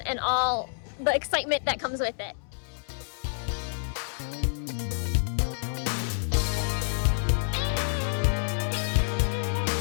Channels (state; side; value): silent; right; 59 dB below the other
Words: all the excitement that comes with it.